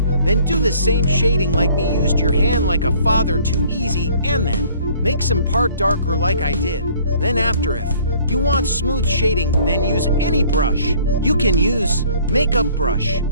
Then do the same shading like me used your hand like a father, too easy, and then make some part darker like I did. Then after, if you want smooth shading, then use any brush. You can use makeup brush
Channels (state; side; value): inverted; both; correlation -0.56